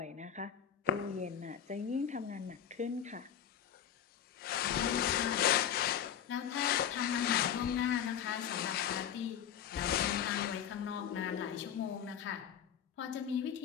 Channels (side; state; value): right; quieter; 9.3 dB